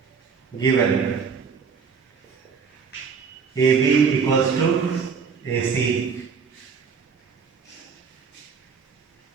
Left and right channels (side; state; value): left; quieter; 5.9 dB